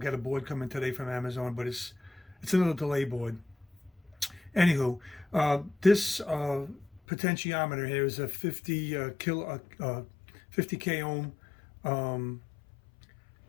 a board coming today from Amazon, but it's another delay board. Anywho, this potentiometer here is a 50 k ohm um,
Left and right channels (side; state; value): right; drops out; at 7.0 s